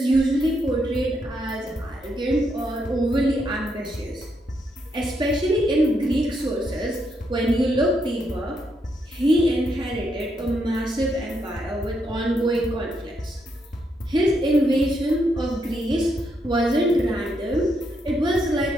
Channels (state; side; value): normal; both; correlation 0.78